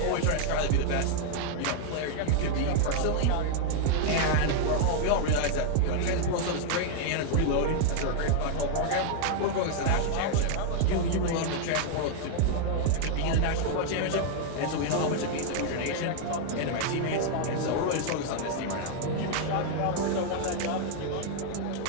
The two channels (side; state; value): both; different; correlation 0.00